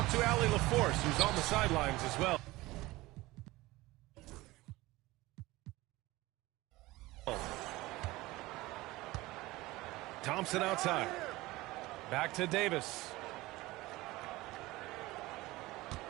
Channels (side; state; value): left; quieter; 19.6 dB